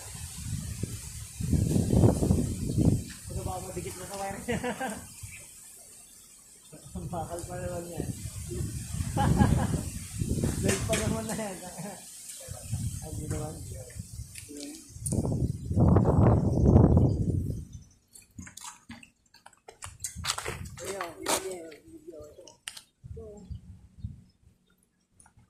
Ano ba ako dikit na sa wire niya? Ang bakal pa naman yan. Live pa naman na yan. Hindi naman.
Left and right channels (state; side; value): identical; both; correlation 1.00